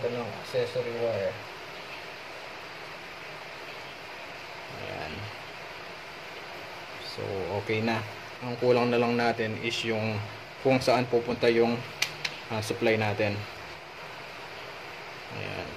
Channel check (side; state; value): both; identical; correlation 1.00